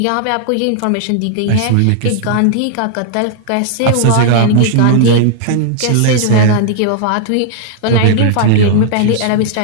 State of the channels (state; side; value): different; both; correlation -0.01